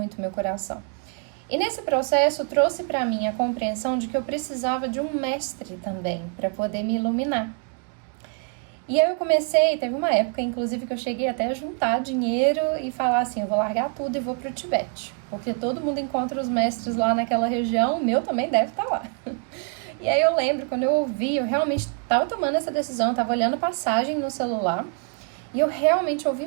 meu coração. E nesse processo trouxe para mim a compreensão de que eu precisava de um mestre também para poder me iluminar. E aí eu teve uma época inclusive que eu cheguei até a juntar dinheiro e falar eu vou largar tudo e vou para o Tibete, porque todo mundo encontra os mestres lá naquela região, o meu também deve estar lá. E aí eu lembro, quando eu ouvi, eu realmente estava tomando essa decisão, eu estava olhando passagem no celular e eu realmente ouvi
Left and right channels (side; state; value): left; quieter; 37.2 dB